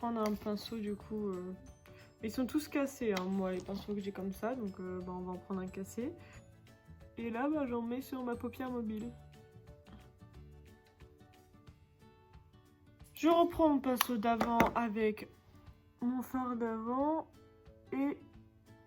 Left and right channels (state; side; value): identical; both; correlation 1.00